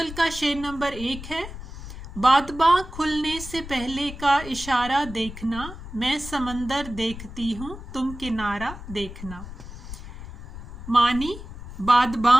का शेर नंबर 1 है। बादबां खुलने से पहले का इशारा देखना, मैं समंदर देखती हूँ तुम किनारा देखना। मानी,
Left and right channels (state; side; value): noise; left; rumble, 12 dB below the sound